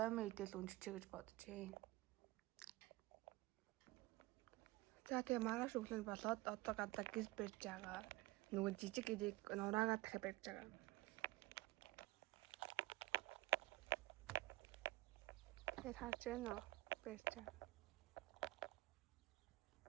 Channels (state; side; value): quieter; left; 19.2 dB